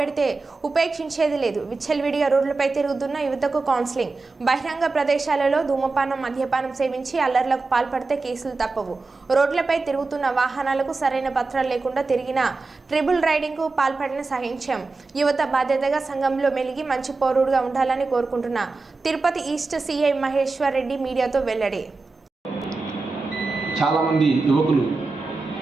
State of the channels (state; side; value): quieter; left; 3.8 dB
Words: ఉపేక్షించేది లేదు. విచ్చలవిడిగా రోడ్లపై తిరుగుతున్న యువతకు కౌన్సిలింగ్. బహిరంగ ప్రదేశాలలో ధూమపానం, మద్యపానం సేవించి అల్లర్లకు పాల్పడితే కేసులు తప్పవు. రోడ్లపై తిరుగుతున్న వాహనాలకు సరైన పత్రాలు లేకుండా తిరిగిన ట్రిబుల్ రైడింగ్కు పాల్పడిన సహించాం. యువత బాధ్యతగా సంఘంలో మెలిగి మంచి పౌరుడుగా ఉండాలని కోరుకుంటున్న తిరుపతి ఈస్ట్ సిఐ మహేశ్వర్ రెడ్డి మీడియాతో వెల్లడి. చాలామంది యువకులు